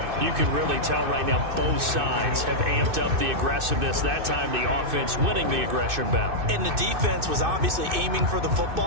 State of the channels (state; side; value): late; left; 2.6 ms